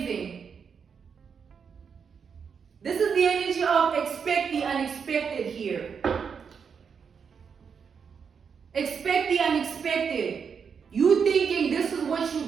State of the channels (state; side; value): quieter; left; 6.4 dB